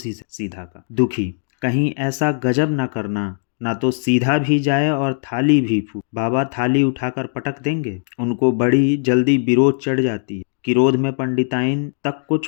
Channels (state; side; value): silent; right; 66 dB below the other